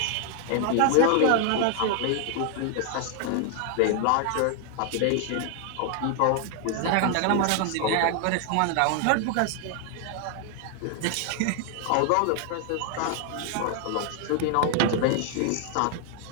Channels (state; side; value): different; both; correlation 0.00